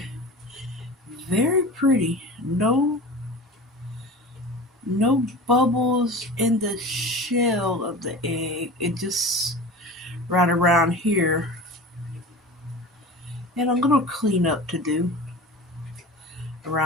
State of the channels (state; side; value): normal; both; correlation 0.34